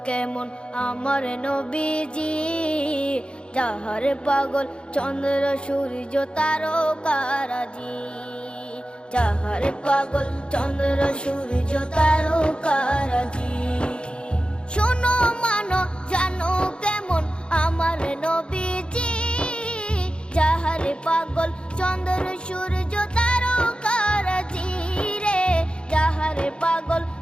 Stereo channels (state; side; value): late; right; 0.054 ms